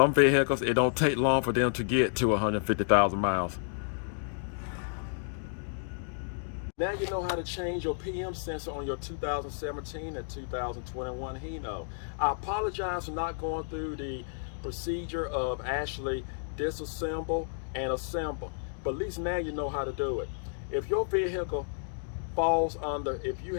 vehicles, it don't take long for them to get to 150,000 miles. Now you know how to change your PM sensor on your 2017 and 2021 Hino. I apologize for not going through the procedure of actually disassemble and assemble, but at least now you know how to do it. If your vehicle falls under, if you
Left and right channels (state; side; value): silent; right; digital silence